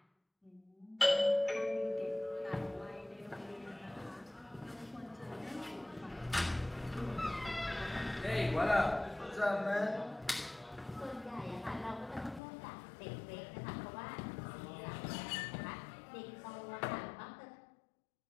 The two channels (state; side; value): drops out; right; at 12.4 s